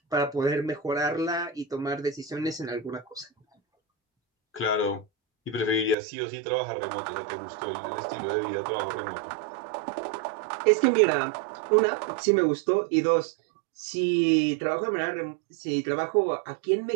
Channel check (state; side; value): drops out; left; at 6.0 s